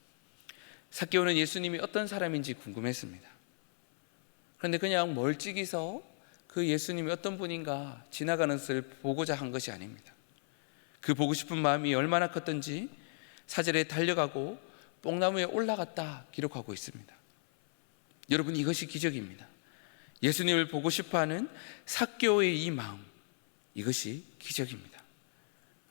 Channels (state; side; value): silent; right; 55 dB below the other